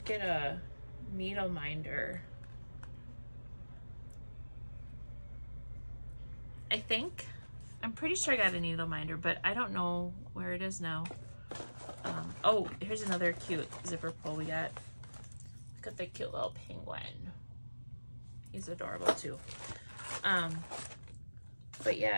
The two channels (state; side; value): inverted; both; correlation -1.00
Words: get a needle minder. I think. I'm pretty sure I got a needle minder, but I don't know where it is now. Oh, here's another cute zipper pull we got. Look at the cute little penguin. He's adorable too. But